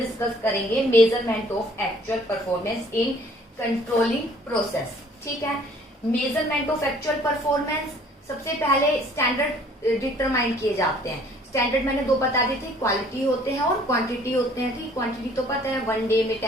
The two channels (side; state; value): both; normal; correlation 0.57